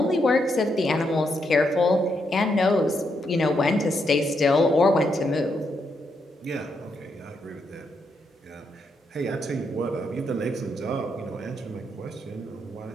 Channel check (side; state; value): both; normal; correlation 0.79